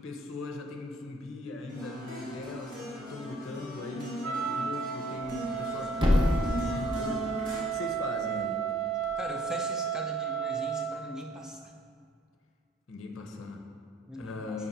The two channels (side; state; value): both; normal; correlation 0.60